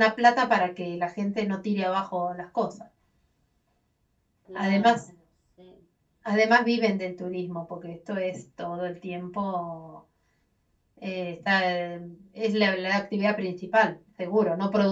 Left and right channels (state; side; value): identical; both; correlation 1.00